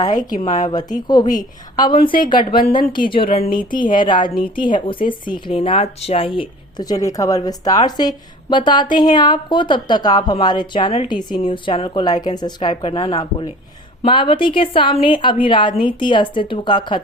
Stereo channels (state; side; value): normal; both; correlation 0.44